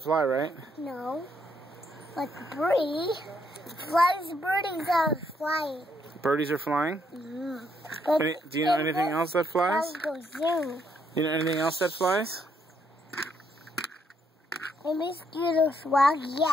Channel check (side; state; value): both; normal; correlation 0.74